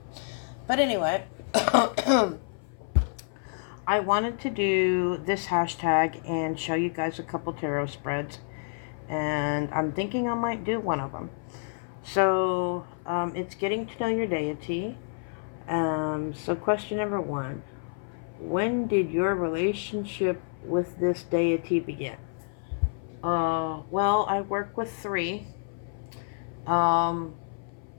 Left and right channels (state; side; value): silent; right; 56 dB below the other